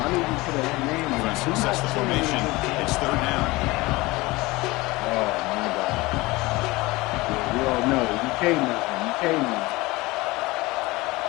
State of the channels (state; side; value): quieter; right; 21.5 dB